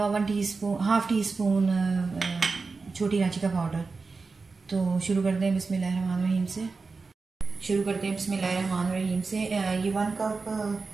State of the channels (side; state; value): left; quieter; 4.3 dB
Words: हाफ़ टी स्पून छोटी इलायची का पाउडर। तो शुरू करते हैं बिस्मिल्लाहिर्रहमानिर्रहीम से। ये 1 कप